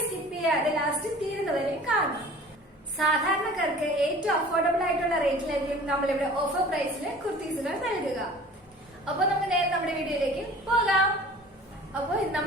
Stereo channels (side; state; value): both; normal; correlation 0.45